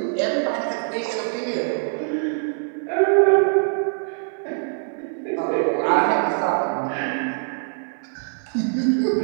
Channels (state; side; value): silent; left; digital silence